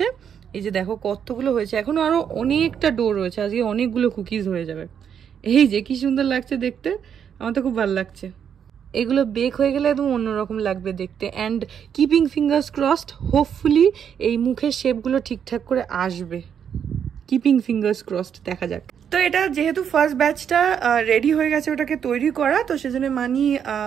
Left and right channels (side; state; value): left; quieter; 8.1 dB